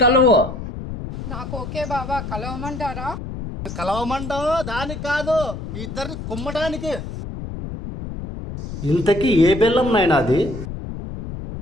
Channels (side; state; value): left; noise; rumble, 8 dB below the sound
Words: కలువు. నాకు ఓకే బాబా, కలవమంటారా? కలవమంటావు దానికి కాదు, మీ ఇద్దరిని కుమ్మటానికి. ఇంతకీ ఏ బెల్లం నాయన అది?